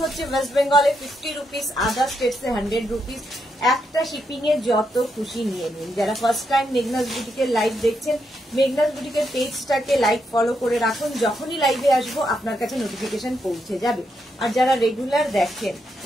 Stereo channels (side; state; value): both; normal; correlation 0.81